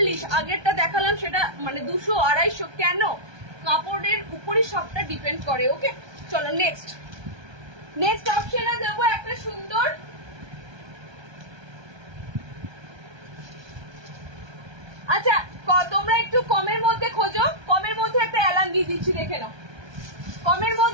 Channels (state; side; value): late; left; 1.2 ms